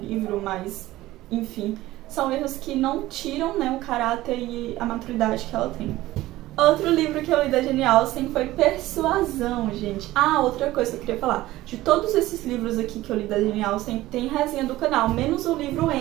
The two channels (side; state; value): left; quieter; 16.6 dB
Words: mas, enfim, são erros que não tiram, né, o caráter e a maturidade que ela tem. Outro livro que eu li da Jane Austen foi Persuasão, gente. Outra coisa que eu queria falar. De todos esses livros aqui que eu li da Jane Austen, tem resenha do canal, menos o livro